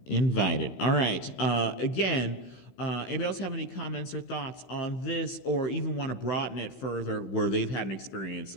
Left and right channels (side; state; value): right; late; 16 ms